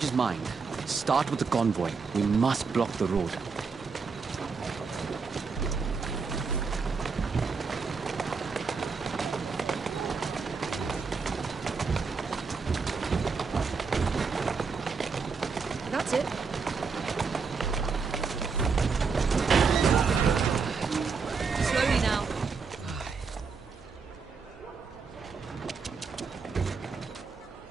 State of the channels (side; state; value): left; quieter; 5.1 dB